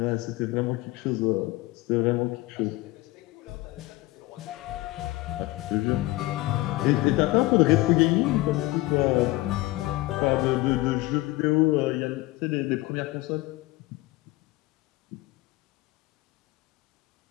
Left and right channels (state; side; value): quieter; right; 19.2 dB